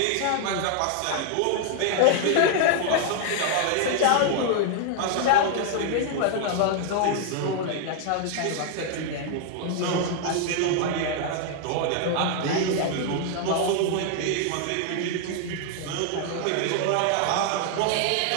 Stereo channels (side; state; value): both; different; correlation 0.00